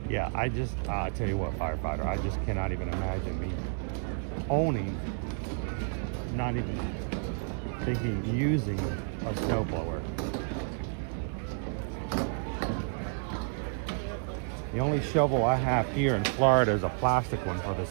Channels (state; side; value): silent; left; 57 dB below the other